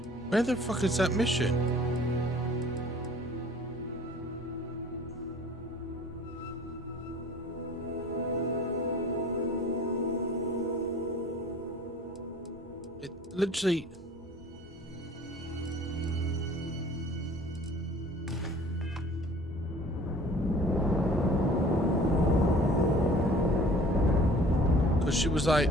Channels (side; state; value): both; normal; correlation 0.49